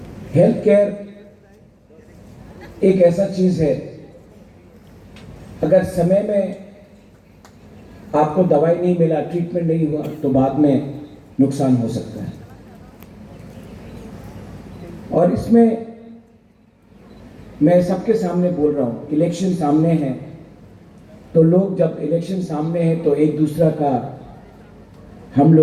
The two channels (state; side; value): identical; both; correlation 1.00